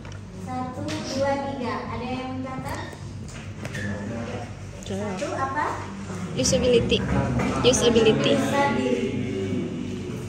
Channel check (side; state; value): both; identical; correlation 1.00